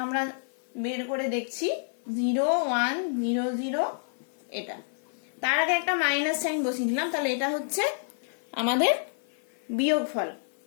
আমরা বের করে দেখছি 0100 এটা। তার আগে একটা মাইনাস সাইন বসিয়ে দিলাম, তাহলে এটা হচ্ছে আমাদের বিয়োগফল।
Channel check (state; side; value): silent; right; 59 dB below the other